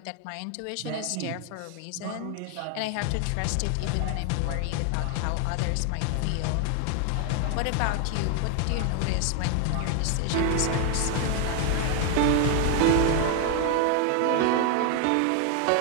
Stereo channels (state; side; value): different; both; correlation 0.01